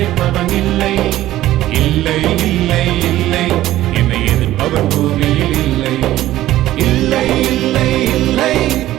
இல்லை, இல்லை இல்லை இல்லை என்னை எதிர்ப்பவன் பூமியில் இல்லை. இல்லை இல்லை இல்லை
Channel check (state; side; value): quieter; left; 14.6 dB